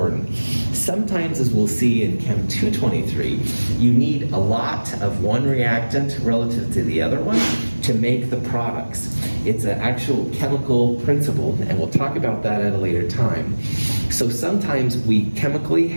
Sometimes, as we'll see in Chem 223, you need a lot of one reactant relative to the other one to make the products. It's an actual chemical principle, and we'll talk about that at a later time. So sometimes we chemically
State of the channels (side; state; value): both; inverted; correlation -1.00